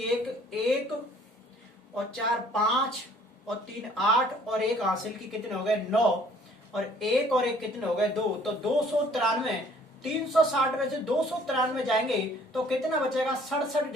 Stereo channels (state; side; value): normal; both; correlation 0.58